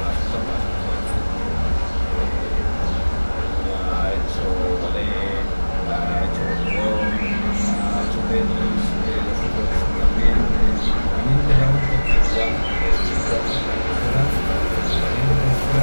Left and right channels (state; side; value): inverted; both; correlation -1.00